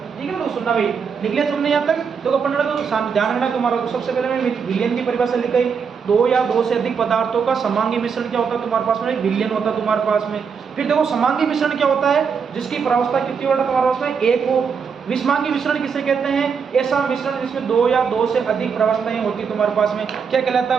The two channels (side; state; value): left; quieter; 6.2 dB